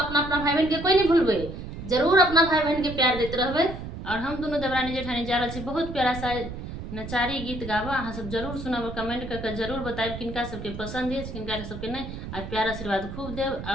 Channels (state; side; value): noise; right; rumble, 9 dB below the sound